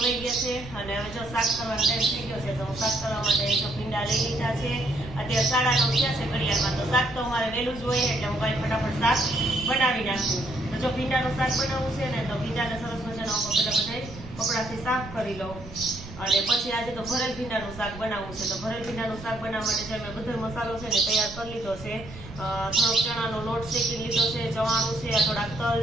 ગયા છે અને હવે જો શાક કરવાનો ટાઈમ થઈ ગયો છે, તો હું શાક કરવા માટે જો ભીંડા લઈ લીધા છે. અત્યારે 9:30 થયા છે ઘડિયાળમાં, તો શાક તો અમારે વહેલું જ હોય એટલે હું કાંઈ ફટાફટ શાક બનાવી નાખું. તો જો ભીંડાનું શાક બનાવવું છે ને તો ભીંડાને સરસ મજાનો બધા કપડાથી સાફ કરી લઉં. અને પછી આજે તો ભરેલ ભીંડાનું શાક બનાવવું છે. તો ભરેલ ભીંડાનું શાક બનાવવા માટે જે મેં બધો મસાલો છે ને તૈયાર કરી લીધો છે. થોડોક ચણાનો લોટ શેકી લીધો છે, ચવાણું છે, થોડાક તલ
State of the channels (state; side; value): noise; right; rumble, 14 dB below the sound